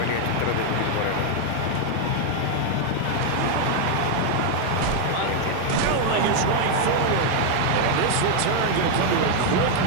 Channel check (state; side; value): different; both; correlation 0.00